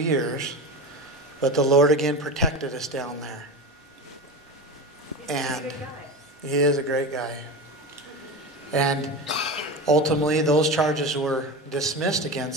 but the Lord again protected us down there. And He is a great guy. And ultimately, those charges were dismissed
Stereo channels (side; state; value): both; normal; correlation 0.25